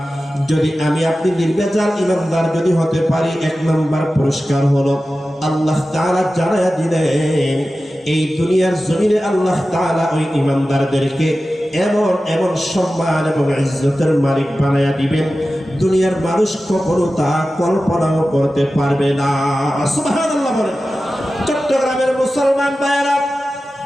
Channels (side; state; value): both; normal; correlation 0.94